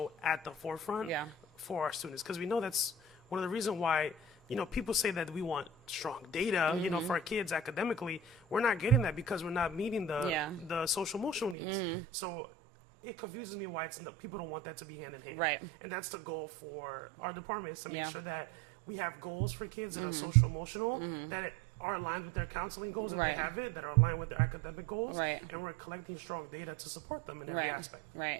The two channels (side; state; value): left; drops out; at 11.6 s